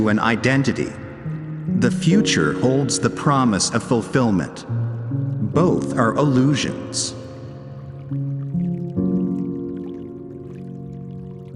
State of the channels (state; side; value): identical; both; correlation 1.00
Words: an identity. The future holds the promise of fulfillment. Both are illusions.